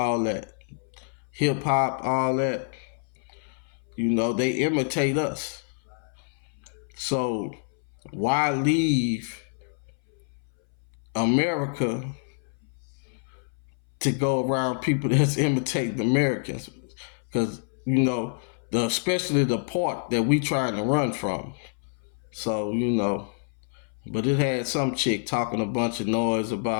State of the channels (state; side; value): silent; right; 60 dB below the other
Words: that, hip hop, all that. They imitate us. So why leave America to go around people that's imitating Americans? Because especially the part that we trying to run from. So, but it had some chick talking a bunch of noise